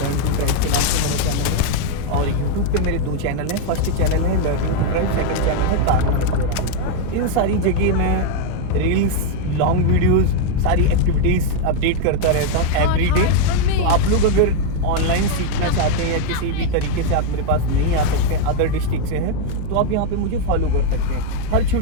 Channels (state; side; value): different; both; correlation 0.01